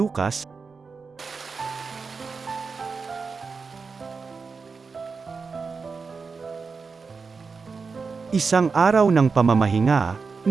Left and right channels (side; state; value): left; quieter; 4.9 dB